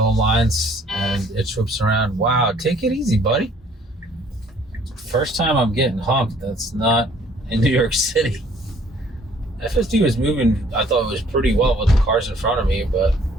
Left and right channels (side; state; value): both; normal; correlation 0.59